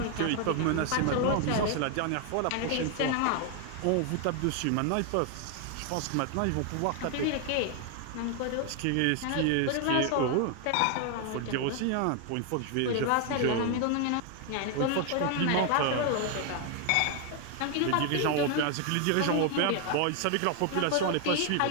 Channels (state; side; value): different; both; correlation 0.00